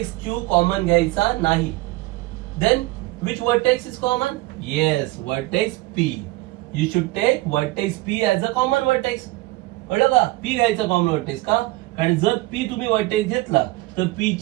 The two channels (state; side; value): quieter; left; 20.1 dB